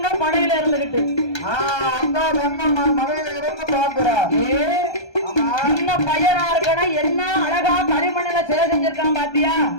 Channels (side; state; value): right; late; 1.3 ms